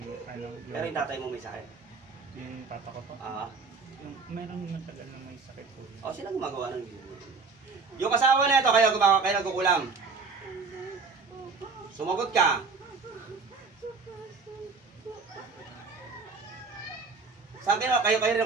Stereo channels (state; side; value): quieter; left; 4.6 dB